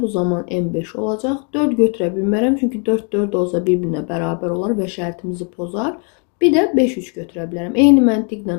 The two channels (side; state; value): right; quieter; 38.2 dB